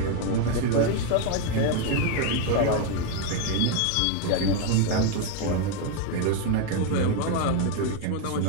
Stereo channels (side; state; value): both; different; correlation 0.01